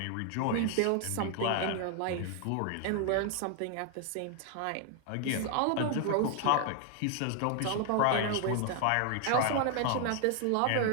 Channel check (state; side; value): different; both; correlation 0.00